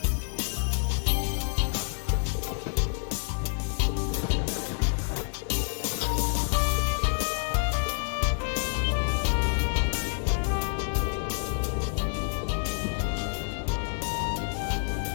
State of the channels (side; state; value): right; silent; digital silence